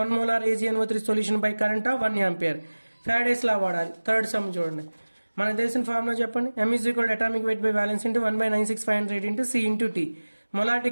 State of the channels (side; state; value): both; inverted; correlation -1.00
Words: 1 molar AgNO3 solution by current of 1 ampere. Faraday's law వాడాలి. Third sum చూడండి, మనకు తెలిసిన ఫార్ములా చెప్పండి. m is equal atomic weight by valence into 1/96500 into C into T.